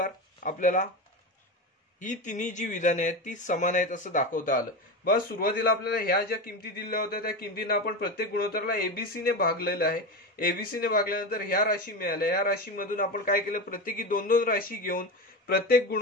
आपल्याला ही तिन्ही जी विधाने आहेत ती समान आहेत असं दाखवता आलं। बस सुरुवातीला आपल्याला ह्या ज्या किमती दिल्या होत्या त्या किमतींना आपण प्रत्येक गुणोत्तराला एबीसी ने भागलेलं आहे। एबीसी ने भागल्यानंतर ह्या राशी मिळाल्या, या राशीमधून आपण काय केलं प्रत्येकी दोन दोन राशी घेऊन प्रत्येक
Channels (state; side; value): normal; both; correlation 0.20